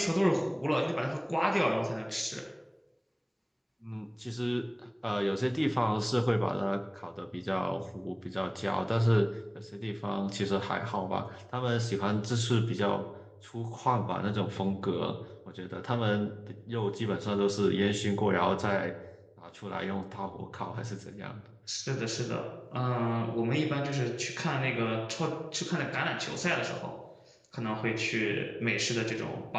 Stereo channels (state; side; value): identical; both; correlation 1.00